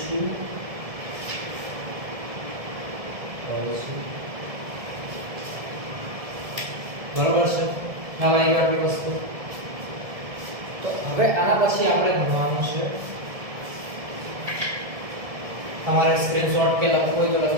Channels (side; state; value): left; late; 1.7 ms